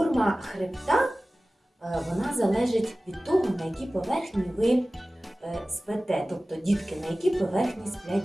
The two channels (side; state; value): both; normal; correlation 0.97